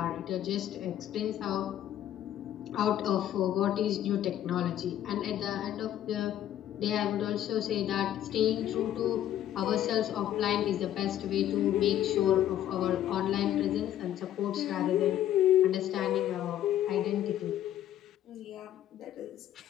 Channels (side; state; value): right; quieter; 11.7 dB